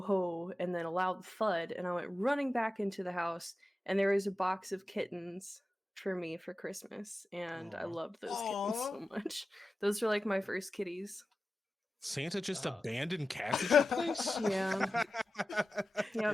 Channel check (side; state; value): both; normal; correlation 0.94